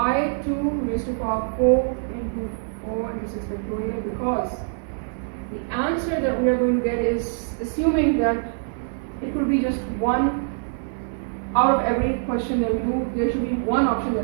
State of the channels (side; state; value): left; silent; digital silence